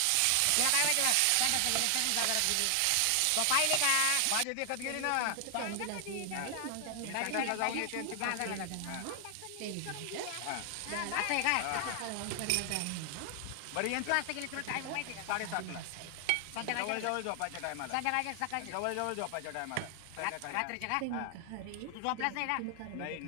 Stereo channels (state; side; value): different; both; correlation 0.00